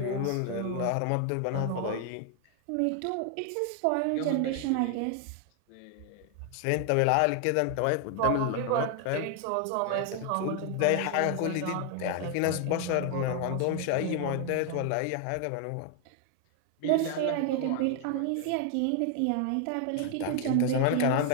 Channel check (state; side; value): different; both; correlation 0.00